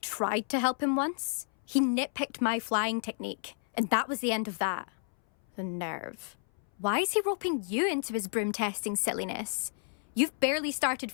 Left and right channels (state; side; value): silent; right; 57 dB below the other